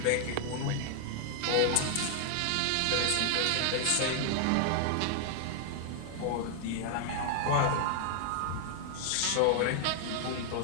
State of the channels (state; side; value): different; both; correlation 0.00